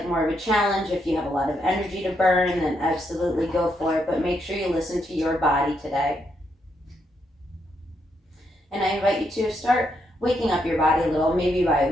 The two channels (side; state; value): both; normal; correlation 0.78